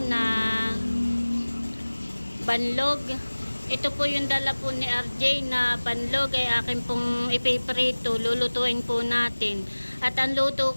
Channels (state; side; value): inverted; both; correlation -1.00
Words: na banlog. Ito po yung dala po ni RJ na panlog ay akin pong ipiprito, lulutuin po natin. At ang luto